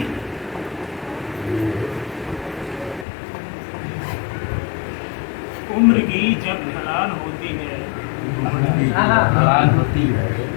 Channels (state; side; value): drops out; right; at 3.1 s